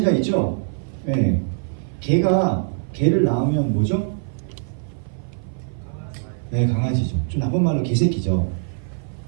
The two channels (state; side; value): silent; left; 55 dB below the other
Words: 있죠? 네. 개를 낳으면 뭐죠? 네, 강아지죠. 좀 나쁜 말로 개새끼죠.